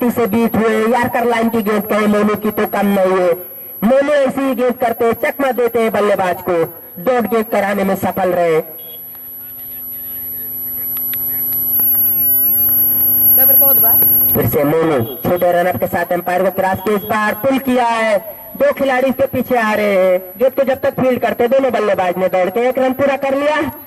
से बीट हुए। यार्कर लाइन की गेंद कहे मोनू की तो कम नहीं है। मोनू ऐसी गेंद करते चकमा देते हैं बल्लेबाज को। डॉट गेंद कराने में सफल रहे। फिर से मोनू छोटे रनअप के साथ एम्पायर को क्रॉस के इस बार पुल किया है। 2 खिलाड़ी इसके पीछे आ रहे हैं। गेंद को जब तक फील्ड करते दोनों बल्लेबाज ने दौड़ के 1 रन पूरा कर लिया।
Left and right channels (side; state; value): both; identical; correlation 1.00